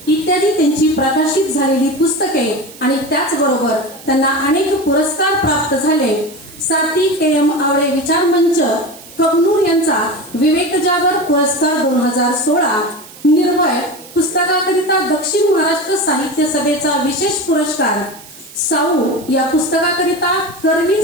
इत्यादी त्यांची प्रकाशित झालेली पुस्तके आणि त्याचबरोबर त्यांना अनेक पुरस्कार प्राप्त झाले. साती KM आवळे विचार मंच कबनूर यांचा विवेक जागर पुरस्कार 2016, निर्भय पुस्तकाकरिता दक्षिण महाराष्ट्र साहित्य सभेचा विशेष पुरस्कार, साऊ या पुस्तकाकरिता करवी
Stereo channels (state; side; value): noise; right; hiss, 19 dB below the sound